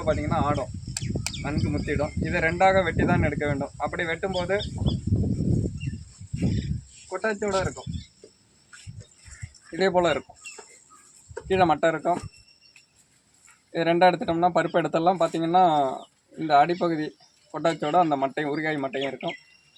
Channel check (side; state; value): both; identical; correlation 1.00